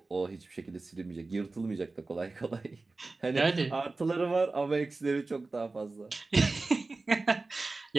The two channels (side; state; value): left; quieter; 3.5 dB